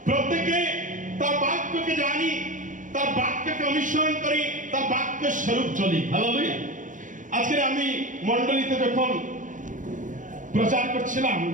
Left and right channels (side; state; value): left; late; 0.37 ms